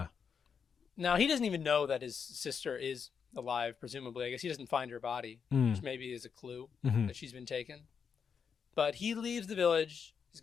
Now, he doesn't even know that his sister is alive, presumably. I guess he doesn't find her body, which maybe is a clue Mhm. that she's been taken. But he leaves the village. He's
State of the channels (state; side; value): quieter; right; 6.6 dB